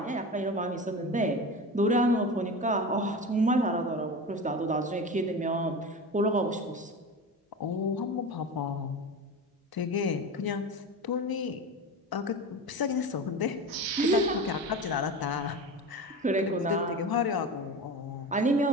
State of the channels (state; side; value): normal; both; correlation 0.28